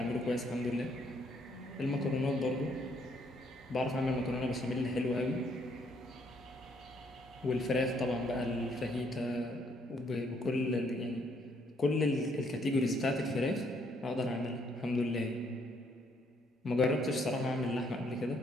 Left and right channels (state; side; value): normal; both; correlation 0.69